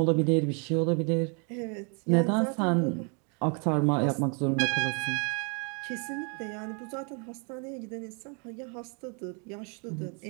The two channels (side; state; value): left; quieter; 36.3 dB